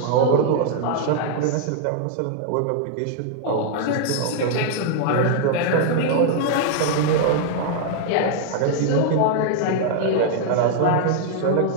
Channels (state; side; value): different; both; correlation 0.00